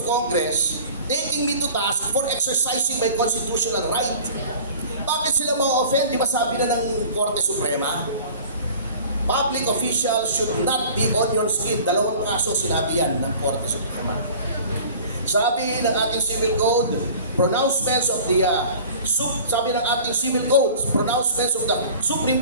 Congress, taking me to task for exercising my constitutional right. Bakit sila ma-offend? Di ba sabi na ng Korte Suprema? Public officials should not be onion skin. 2 kaso sinabi yan ng Korte Suprema. Sabi ng ating civil code, pronouncements of the pronouncements of the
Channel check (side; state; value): both; inverted; correlation -0.44